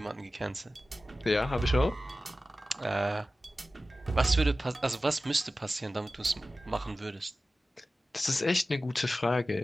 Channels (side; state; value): both; normal; correlation 0.95